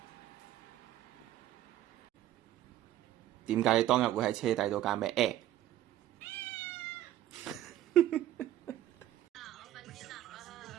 點解你當日會喺車底度㗎？咩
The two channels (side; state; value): left; quieter; 13.0 dB